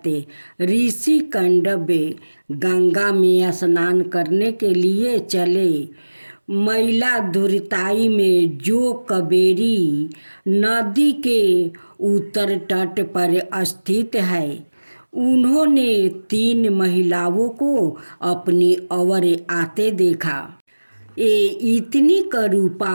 ऋषि कंडवे गंगा में स्नान करने के लिए चले। मैला दुर्ताई में जो कावेरी नदी के उत्तर तट पर स्थित है, उन्होंने 3 महिलाओं को अपनी ओर आते देखा। ये इतनी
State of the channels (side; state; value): both; inverted; correlation -1.00